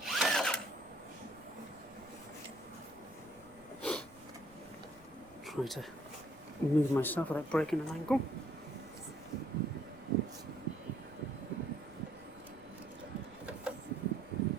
try to move myself without breaking an ankle.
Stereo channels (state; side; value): noise; right; rumble, 24 dB below the sound